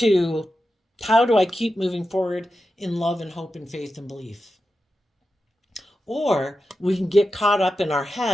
how do I keep moving forward in love and hope and faith and belief? Or we can get caught up in our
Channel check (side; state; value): both; normal; correlation 0.90